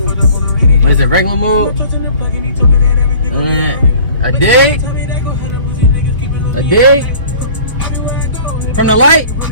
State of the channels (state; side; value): inverted; both; correlation -0.47